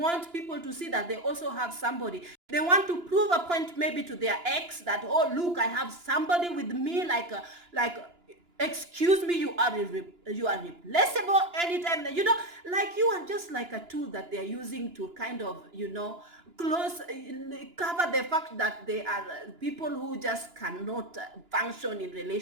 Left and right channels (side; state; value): left; late; 2.9 ms